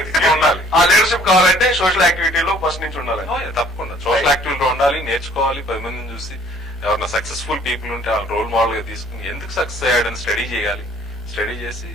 ఉండాలి. ఆ లీడర్షిప్ కావాలంటే సోషల్ యాక్టివిటీలో ఫస్ట్ నుంచి ఉండాలి. తప్పకుండా సోషల్ యాక్టివిటీలో ఉండాలి, నేర్చుకోవాలి. 10 మందిని చూసి ఎవరైనా సక్సెస్ఫుల్ పీపుల్ ఉంటే ఆ రోల్ మోడల్ గా తీసుకుని ఎందుకు సక్సెస్ అయ్యాడని స్టడీ చేయాలి. స్టడీ చేసి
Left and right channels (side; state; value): both; normal; correlation 0.57